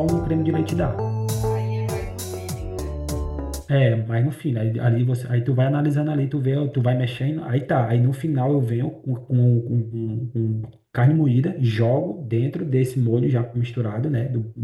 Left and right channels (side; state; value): both; identical; correlation 1.00